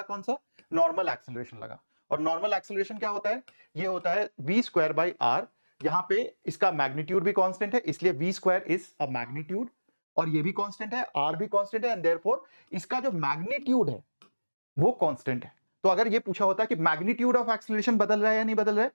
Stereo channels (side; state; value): both; inverted; correlation -1.00